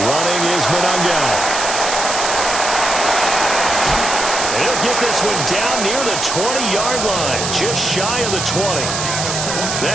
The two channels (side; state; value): right; noise; hiss, 3 dB below the sound